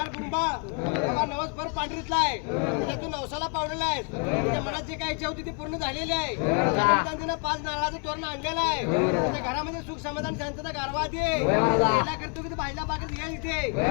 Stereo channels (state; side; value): quieter; right; 37.9 dB